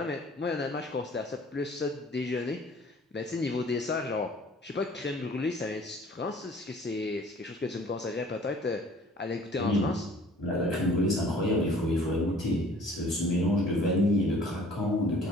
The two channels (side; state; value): both; normal; correlation 0.52